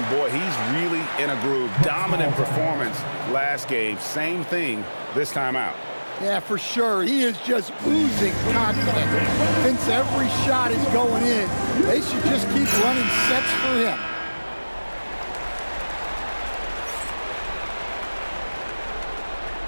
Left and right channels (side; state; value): both; inverted; correlation -1.00